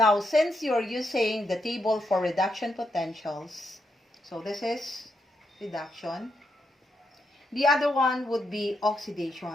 since you're using the table for reduction potentials, so this is reduction. The other one would be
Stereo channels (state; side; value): normal; both; correlation 0.81